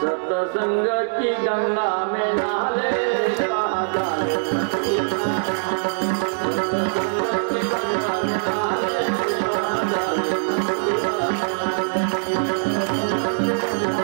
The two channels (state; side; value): silent; left; 64 dB below the other